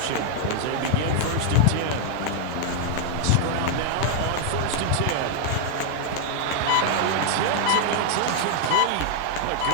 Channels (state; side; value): different; both; correlation 0.00